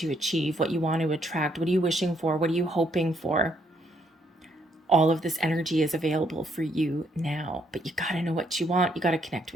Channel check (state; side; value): normal; both; correlation 0.72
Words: achieve, what you want to attract. What are you wishing for? What are you hoping for? All of this energy is available for you now, but you got to know what you want. You got to connect